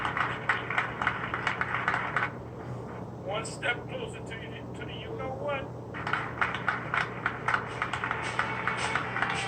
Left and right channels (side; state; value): both; identical; correlation 1.00